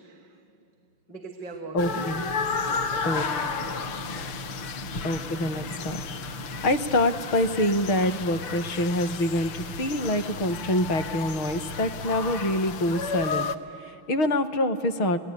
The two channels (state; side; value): late; right; 6.1 ms